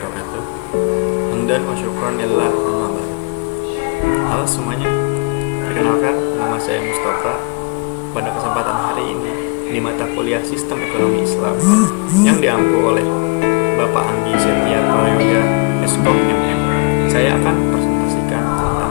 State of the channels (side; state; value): right; quieter; 30.8 dB